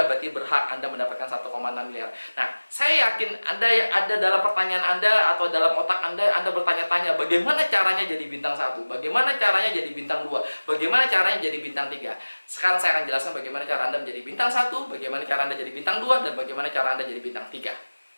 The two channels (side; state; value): both; inverted; correlation -1.00